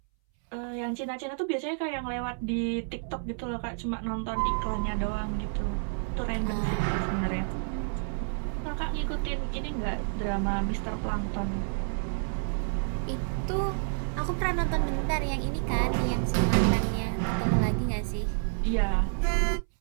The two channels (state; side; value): silent; left; 58 dB below the other